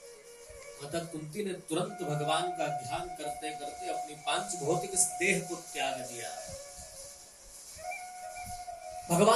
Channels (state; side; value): identical; both; correlation 1.00